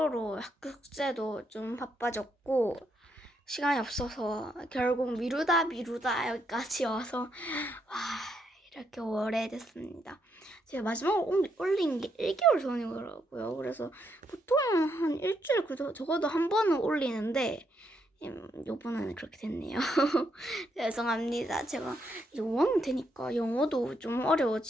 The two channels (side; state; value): both; normal; correlation 0.77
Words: 숙제도 좀 바빠졌고, 시간이 없어서 결국 미루다 여기까지 와서, 와, 이렇게 오래됐습니다. 제가 마지막으로 올린 게 1개월 전이더라고요. 그래서 보통 한 일주일 적어도 한 번은 올리는데, 요번에는 그렇게 됐네요. 죄송합니다. 제가 이제 5학년 되니까 영어도 좀